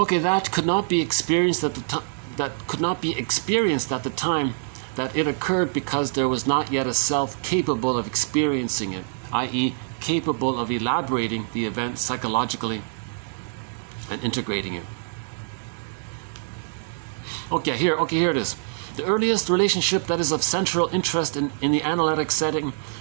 that could not be experienced at the time. That could not be experienced at the time that it occurred because there was not yet a self capable of experiencing it, i.e., capable of elaborating the event psychologically and integrating it. Okay, here it is. The earliest relationship that is of central interest in the analytic setting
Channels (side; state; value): left; silent; digital silence